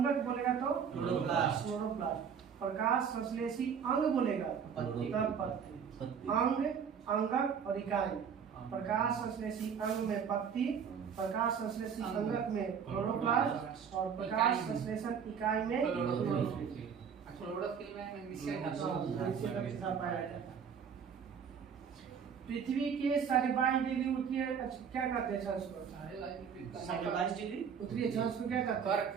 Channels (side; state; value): left; quieter; 7.1 dB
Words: बोलेगा तो क्लोरोप्लास्ट। प्रकाश संश्लेषी अंग बोलेगा तब पत्ती। अंग, अंगक और इकाई। प्रकाश संश्लेषी अंग में पत्ती, प्रकाश संश्लेषी अंगक में क्लोरोप्लास्ट और प्रकाश संश्लेषण इकाई में क्लोरोफिल। पृथ्वी के 22.5 डिग्री उत्तरीय क्या कहते हैं? 22 डिग्री उत्तरीय अक्षांश को क्या कहते हैं?